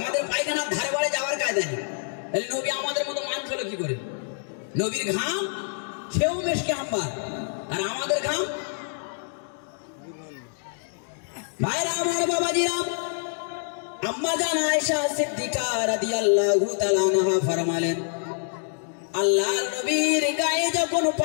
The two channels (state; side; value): silent; right; digital silence